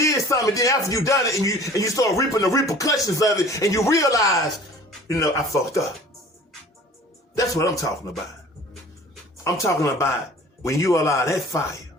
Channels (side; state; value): both; normal; correlation 0.47